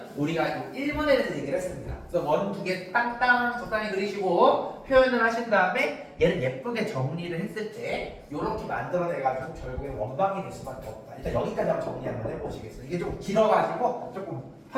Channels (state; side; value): identical; both; correlation 1.00